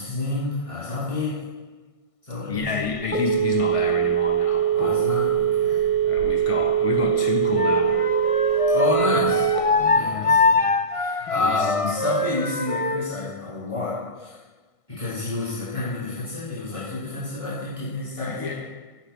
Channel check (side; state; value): right; late; 1.6 ms